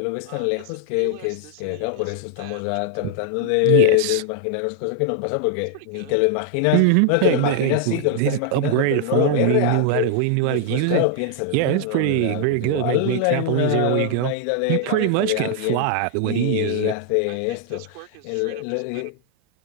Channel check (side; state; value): both; different; correlation 0.00